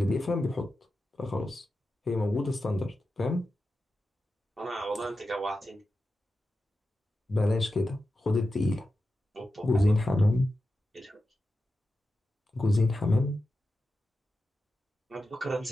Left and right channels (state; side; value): normal; both; correlation 0.91